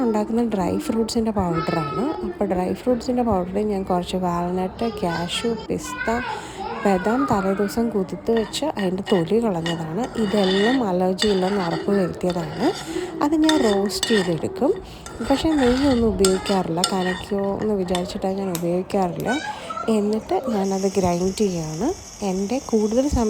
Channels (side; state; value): both; identical; correlation 1.00